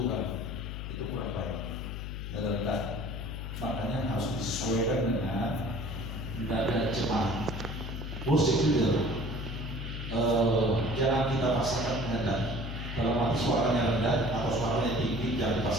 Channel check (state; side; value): noise; left; hum, 6 dB below the sound